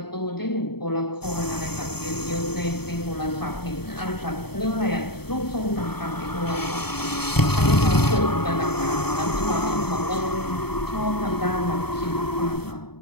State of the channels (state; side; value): late; right; 0.97 ms